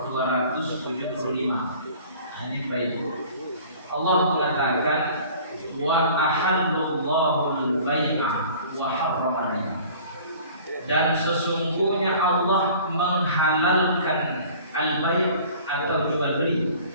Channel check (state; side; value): inverted; both; correlation -0.47